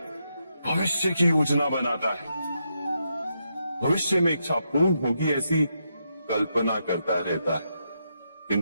भविष्य की योजना बनाता है। भविष्य में इच्छा पूर्ण होगी ऐसी कल्पना करता रहता है,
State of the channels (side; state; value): both; inverted; correlation -0.82